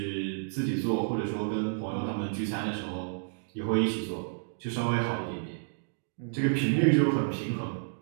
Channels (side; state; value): left; silent; digital silence